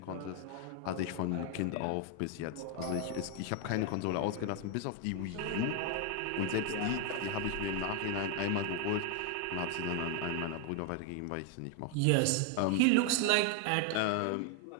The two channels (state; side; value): different; both; correlation 0.01